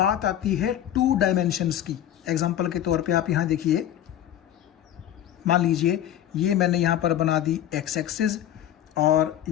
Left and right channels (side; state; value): right; quieter; 11.4 dB